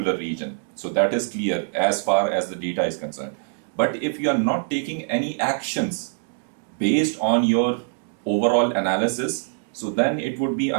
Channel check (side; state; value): left; silent; digital silence